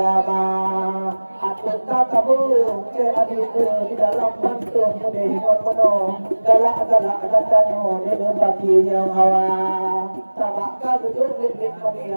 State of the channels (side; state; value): both; inverted; correlation -1.00